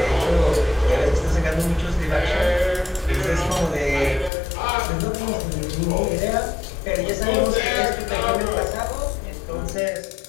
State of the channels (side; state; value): right; drops out; at 4.3 s